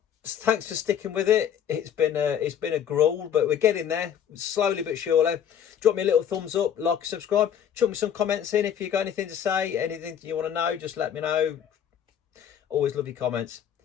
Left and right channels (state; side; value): quieter; right; 9.0 dB